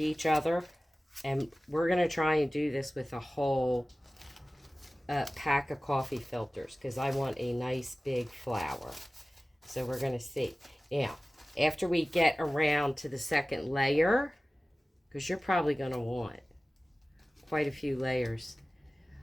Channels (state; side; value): normal; both; correlation 0.97